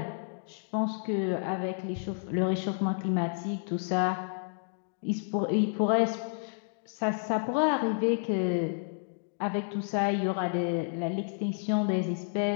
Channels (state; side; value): silent; right; digital silence